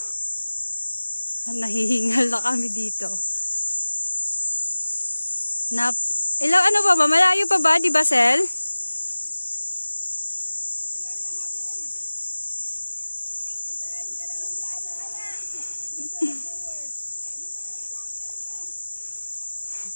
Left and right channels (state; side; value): inverted; both; correlation -1.00